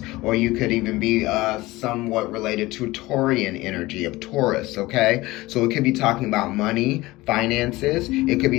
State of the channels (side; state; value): right; quieter; 19.6 dB